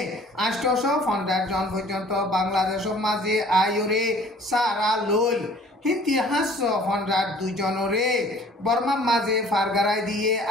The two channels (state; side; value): normal; both; correlation 0.52